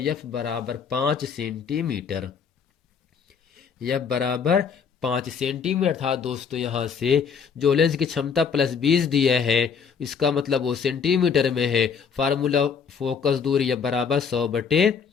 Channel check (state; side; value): quieter; right; 6.4 dB